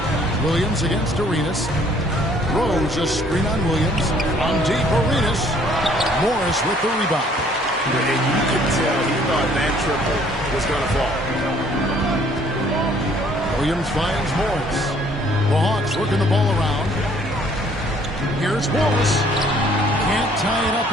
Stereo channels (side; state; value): both; normal; correlation 0.60